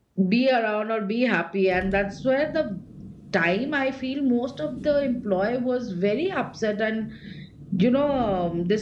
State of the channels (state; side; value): identical; both; correlation 1.00